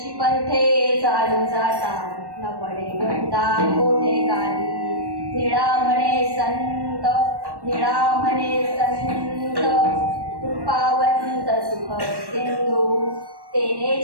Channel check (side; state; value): left; late; 1.1 ms